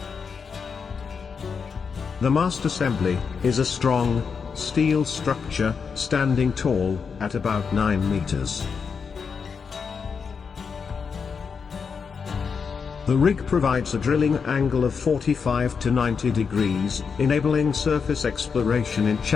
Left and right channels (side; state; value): right; quieter; 5.8 dB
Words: The mast assembly is a strong steel structure standing tall at about 9 meters. The rig provides a drilling angle of 45 to 90 degrees, enabling surface exploration in